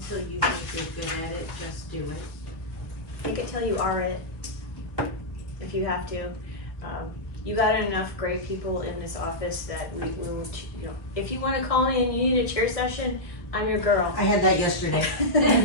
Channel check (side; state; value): right; late; 1.1 ms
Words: you think you're good at it, just do it. Think it till you are it, if you have to. You got enough great people in this office that we will, you know, if you wanna call me and you need a chair session, I'm your girl. I had that yesterday.